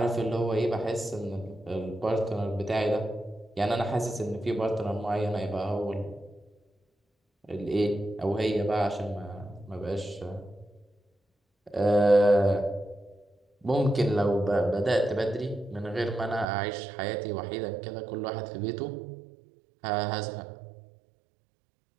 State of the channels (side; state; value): left; drops out; at 16.4 s